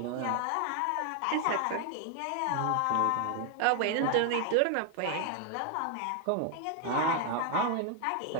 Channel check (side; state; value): both; different; correlation 0.00